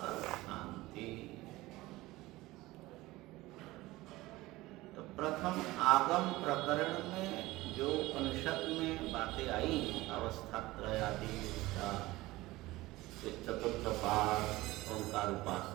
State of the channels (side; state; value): left; quieter; 19.0 dB